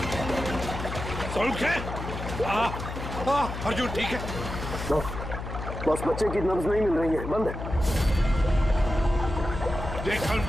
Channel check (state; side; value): noise; left; hum, 7 dB below the sound